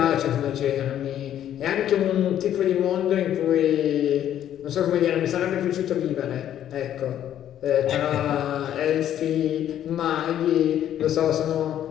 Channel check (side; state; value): right; quieter; 10.9 dB